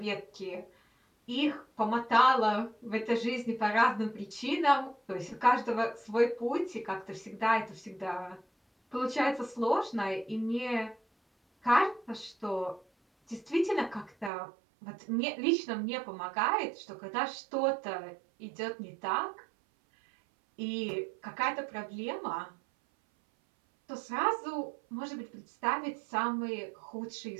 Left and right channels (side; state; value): left; drops out; at 14.3 s